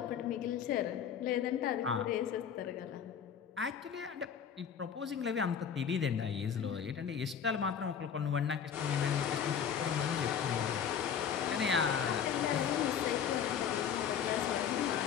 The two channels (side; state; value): right; quieter; 7.9 dB